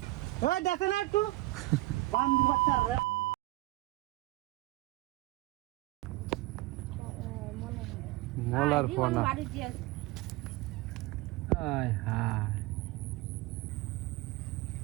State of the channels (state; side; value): quieter; left; 19.6 dB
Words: এই দেখেন একটু বান্ধব বাচ্চার মোলার পোনা আয় হায়